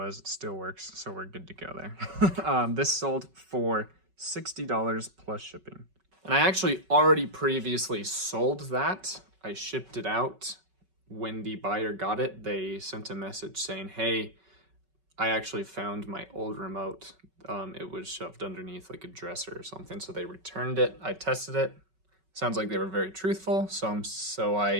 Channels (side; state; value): left; late; 5.3 ms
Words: It still works, so we're good to go there. This sold for $60 plus shipping. And I actually already previously sold that. I shipped it out. When the buyer got it, they sent a message saying, hey, I actually found my old remote. It was shoved underneath like a dresser or something, so they returned it. I tested it. Sounds like they were very truthful, so